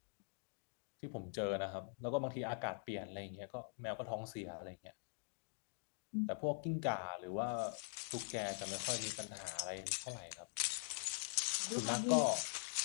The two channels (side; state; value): right; silent; digital silence